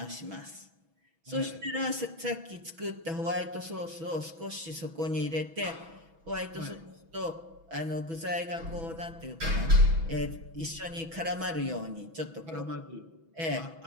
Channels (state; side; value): late; left; 6.1 ms